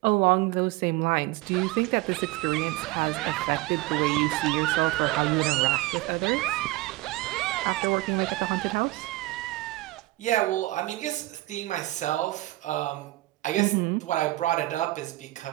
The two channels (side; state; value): left; quieter; 19.1 dB